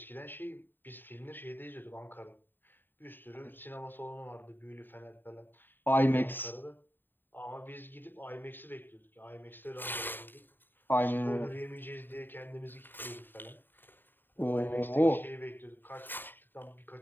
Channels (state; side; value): late; right; 0.094 ms